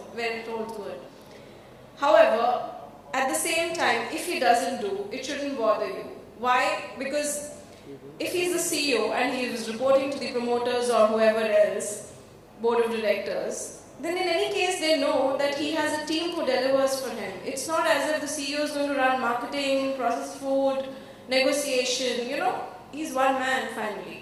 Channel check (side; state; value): both; identical; correlation 1.00